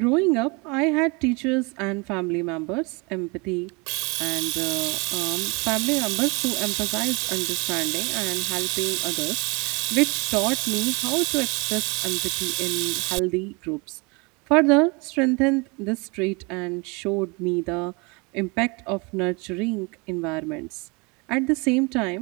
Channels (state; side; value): quieter; left; 29.2 dB